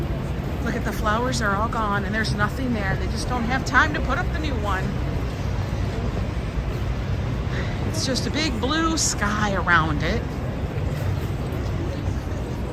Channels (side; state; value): both; identical; correlation 1.00